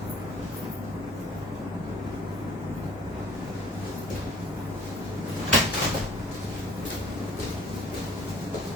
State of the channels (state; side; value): normal; both; correlation 0.52